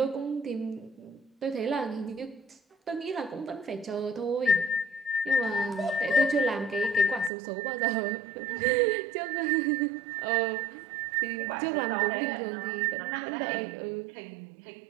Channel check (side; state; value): left; drops out; at 7.3 s